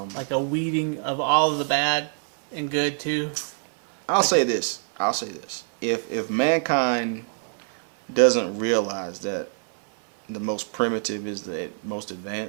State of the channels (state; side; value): silent; left; digital silence